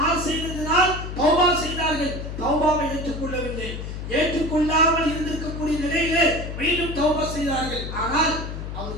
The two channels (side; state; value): left; noise; hum, 7 dB below the sound